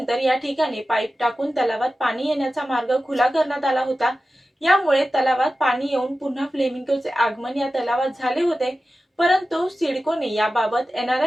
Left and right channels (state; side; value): normal; both; correlation 0.94